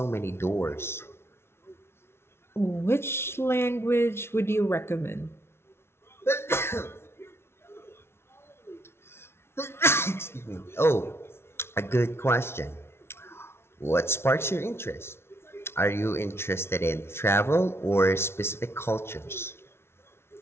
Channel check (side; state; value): right; late; 0.12 ms